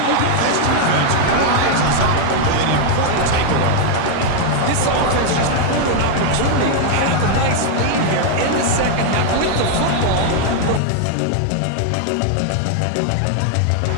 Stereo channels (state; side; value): different; both; correlation 0.00